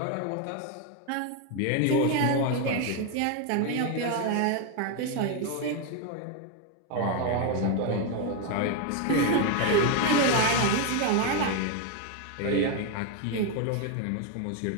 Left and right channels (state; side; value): different; both; correlation 0.01